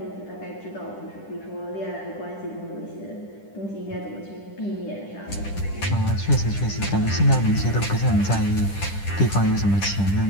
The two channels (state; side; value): late; right; 10 ms